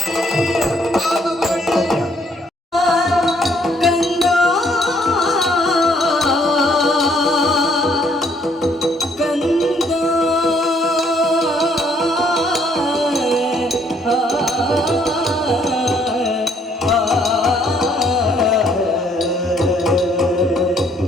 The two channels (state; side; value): normal; both; correlation 0.66